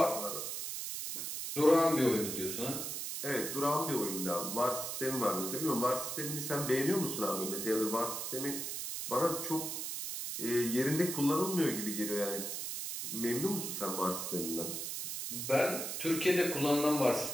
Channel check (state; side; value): noise; right; hiss, 4 dB below the sound